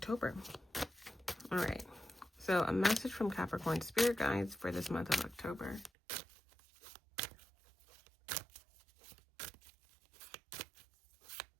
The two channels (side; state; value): left; drops out; at 5.9 s